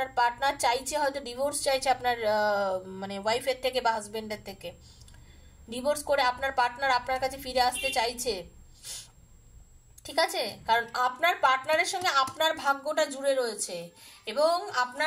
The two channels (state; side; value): identical; both; correlation 1.00